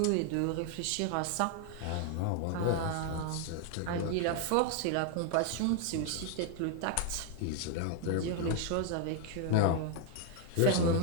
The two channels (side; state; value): both; different; correlation 0.00